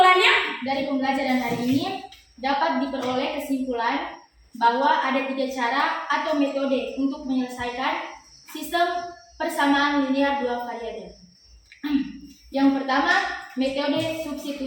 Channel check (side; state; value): both; identical; correlation 1.00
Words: dari pembelajaran hari ini dapat diperoleh kesimpulan bahwa ada 3 cara atau metode untuk menyelesaikan sistem persamaan linear 2 variabel. Yang pertama, metode